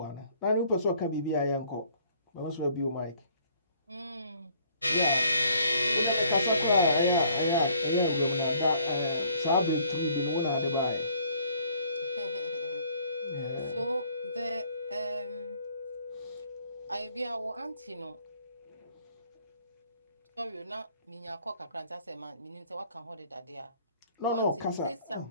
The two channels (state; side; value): inverted; both; correlation -0.61